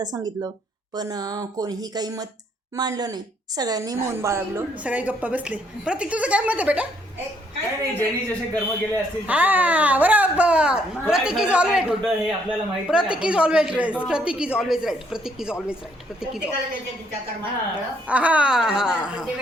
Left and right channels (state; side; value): normal; both; correlation 0.69